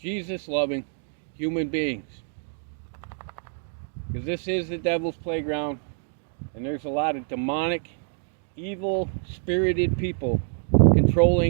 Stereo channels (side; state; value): left; silent; 61 dB below the other